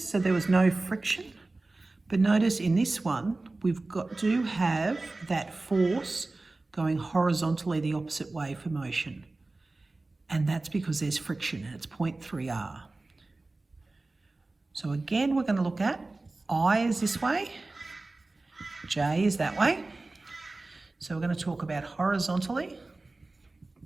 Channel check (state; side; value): quieter; left; 3.2 dB